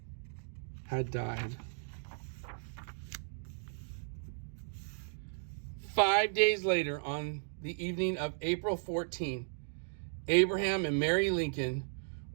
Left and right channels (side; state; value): left; silent; digital silence